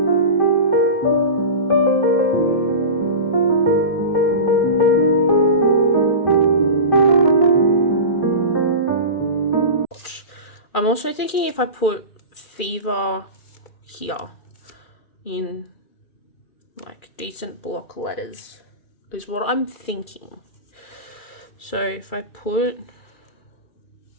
I'm also thinking if I put Fever here in like decent block letters is what I'm thinking. So if I put,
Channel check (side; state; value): right; late; 2.4 ms